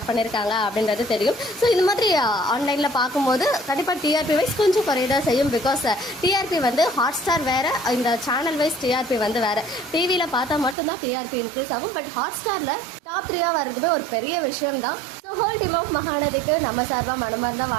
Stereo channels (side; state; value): left; drops out; at 10.8 s